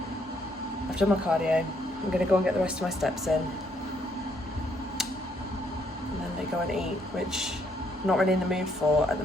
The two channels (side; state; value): both; normal; correlation 0.71